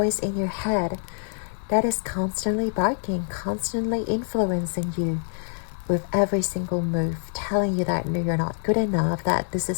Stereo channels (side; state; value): right; silent; 61 dB below the other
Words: in your head that is constantly barking, constantly influencing you with every single move, telling you that no, you're not good enough, that this